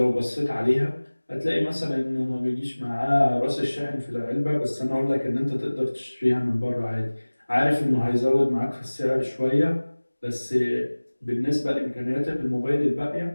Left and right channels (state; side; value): inverted; both; correlation -1.00